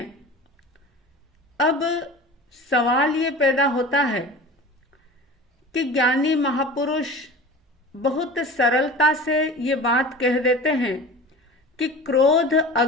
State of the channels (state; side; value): normal; both; correlation 0.36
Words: अब सवाल ये पैदा होता है कि ज्ञानी महापुरुष बहुत सरलता से ये बात कह देते हैं कि क्रोध